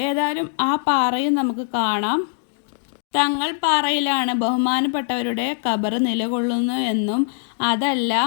ഏതായാലും ആ പാറയും നമുക്ക് കാണാം. തങ്ങൾപ്പാറയിലാണ് ബഹുമാനപ്പെട്ടവരുടെ ഖബർ നിലകൊള്ളുന്നു എന്നും അതല്ല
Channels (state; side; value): silent; right; digital silence